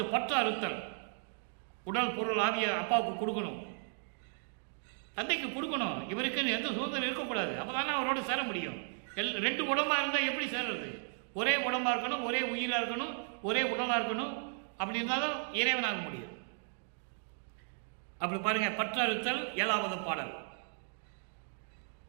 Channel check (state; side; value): silent; left; 54 dB below the other